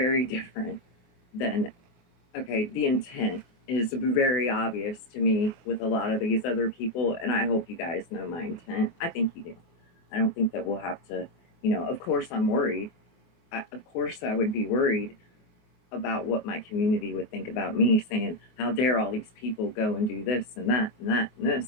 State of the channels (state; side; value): late; right; 24 ms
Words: different than okay, the intent is very obvious to me with a lot of these other people, and I hope you guys know my intent. I think you do. I don't think that we'll have to, of course I'm worried. Of course I would be worried about what my community would think about me saying, how dare all these people go and do this and that and that and